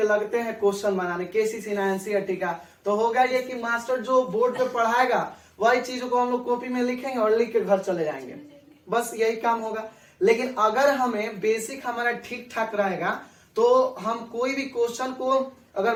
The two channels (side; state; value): both; identical; correlation 1.00